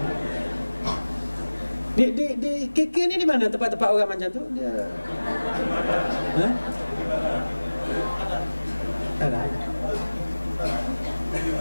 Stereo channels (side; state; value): both; inverted; correlation -1.00